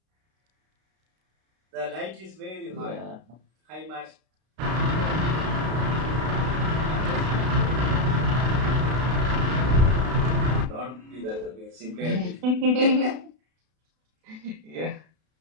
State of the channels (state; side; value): late; left; 32 ms